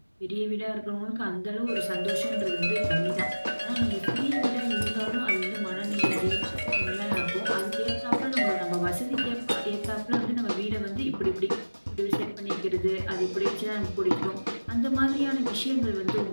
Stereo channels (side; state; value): both; inverted; correlation -1.00